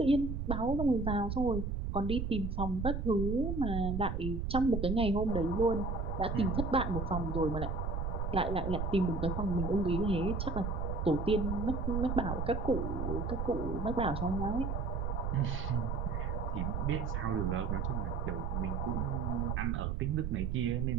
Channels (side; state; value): right; noise; rumble, 2 dB below the sound